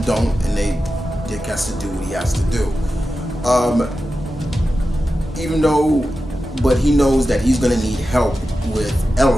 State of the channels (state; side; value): normal; both; correlation 0.92